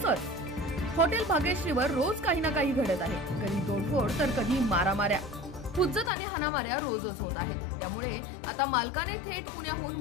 हॉटेल भाग्यश्रीवर रोज काही ना काही घडत आहे, कधी तोडफोड तर कधी मारामाऱ्या, हुज्जत आणि हाणामाऱ्या रोजच होत आहेत। त्यामुळे आता मालकाने थेट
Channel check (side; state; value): right; drops out; at 6.1 s